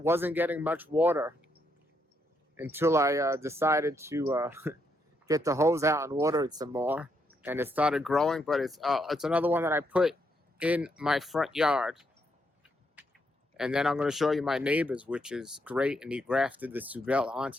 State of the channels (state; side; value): normal; both; correlation 0.77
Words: getting much water until I decided to get the hose out and water it some more. And it started growing, but it's another one that I put in my front yard. And then I'm going to show you my neighbor's, which is great. And he grafted the Subel